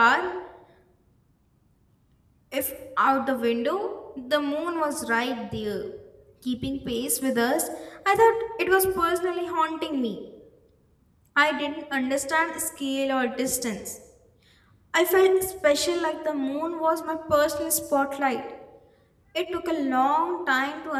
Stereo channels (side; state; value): both; identical; correlation 1.00